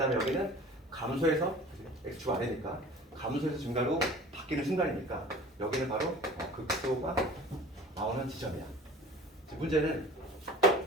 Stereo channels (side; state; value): both; normal; correlation 0.42